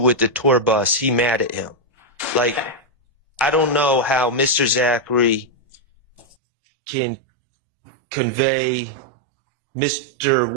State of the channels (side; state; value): left; drops out; at 6.4 s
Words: the tour bus, he mad at him. Like, I don't know how Mr. Zachary can convey Mr.